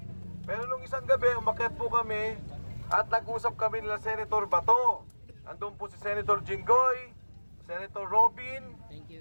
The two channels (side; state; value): both; inverted; correlation -1.00